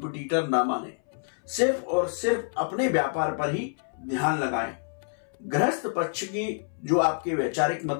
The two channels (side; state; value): right; silent; 60 dB below the other